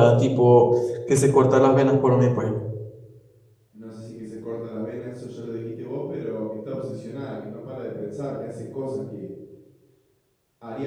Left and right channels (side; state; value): both; identical; correlation 1.00